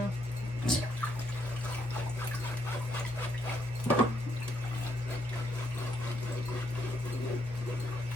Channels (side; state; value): both; normal; correlation 0.74